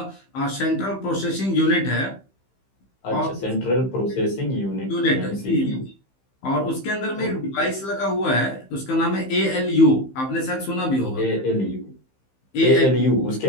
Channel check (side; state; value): right; late; 15 ms